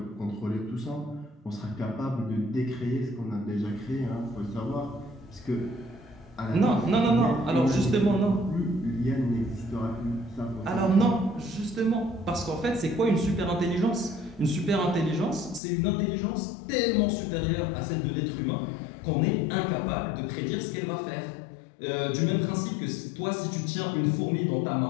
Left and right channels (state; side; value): drops out; right; at 15.6 s